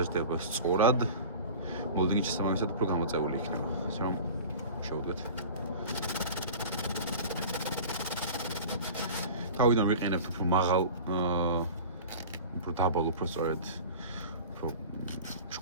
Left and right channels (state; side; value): inverted; both; correlation -0.37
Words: სწორად, მოლდინგი შესაბამისად უფრო გამოწეული იქნება. ასე რომ შევუდგეთ. თავიდან ვიყენებთ უფრო მაღალ, უფრო დაბალ, უფრო სწორედ უფრო